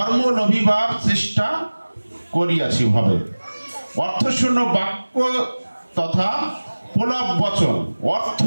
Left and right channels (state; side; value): inverted; both; correlation -1.00